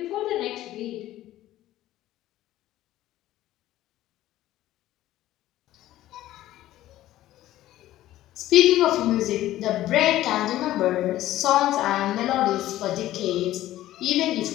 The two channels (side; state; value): right; quieter; 14.4 dB